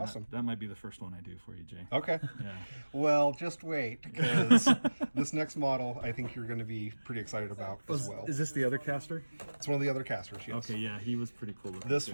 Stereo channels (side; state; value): both; inverted; correlation -1.00